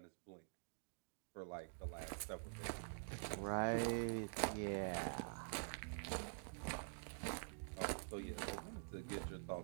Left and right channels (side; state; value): left; silent; digital silence